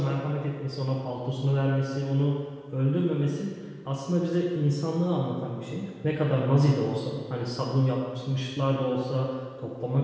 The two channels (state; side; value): identical; both; correlation 1.00